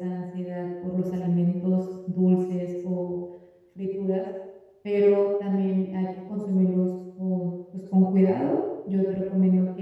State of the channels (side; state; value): both; identical; correlation 1.00